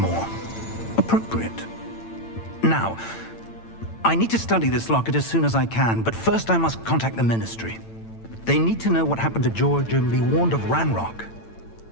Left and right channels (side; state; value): right; late; 8.9 ms